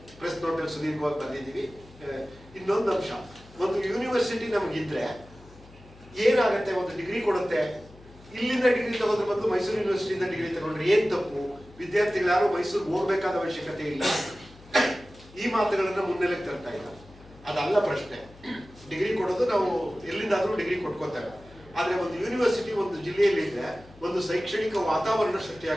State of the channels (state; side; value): noise; left; hum, 23 dB below the sound